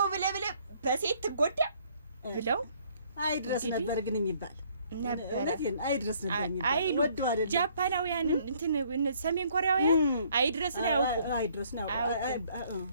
ብለ በሴት ትጎዳ ብለው አይድረስ ነበር ግን የሚባል ነበር። አይድረስ ነበር የሚባል አይሉ ጃፓናውያን እንትን ሰሜን ኮሪያውያን አይድረስ ነው ያውቁ። አይድረስ ነው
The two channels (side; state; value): both; inverted; correlation -0.63